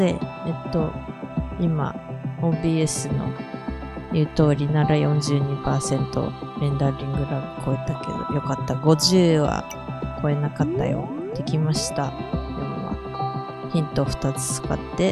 今 OBS の言う通りなら 42% レンダリングラグ超えたけどよかった。50は超えなかったよ。できました。でもヒント2つ使っ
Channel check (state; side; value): identical; both; correlation 1.00